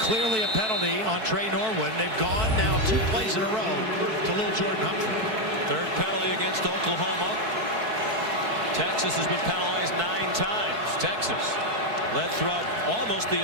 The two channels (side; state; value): left; late; 4.6 ms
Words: a penalty on Trey Norwood. They've gone now 2 plays in a row to little Jordan Humphrey. 3rd penalty against Oklahoma. Texas has been penalized 9 times. Texas led throughout almost the